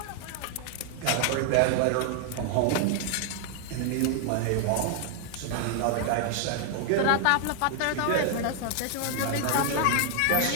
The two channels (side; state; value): both; different; correlation 0.00